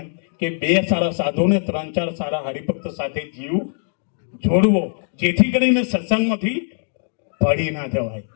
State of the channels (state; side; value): silent; right; digital silence